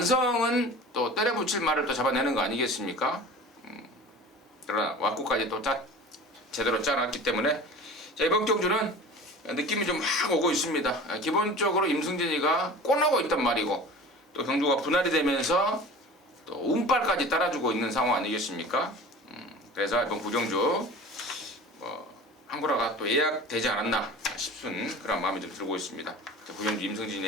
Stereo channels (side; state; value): both; normal; correlation 0.39